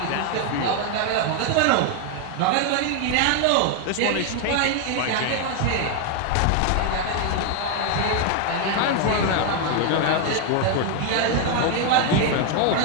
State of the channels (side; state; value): both; different; correlation 0.01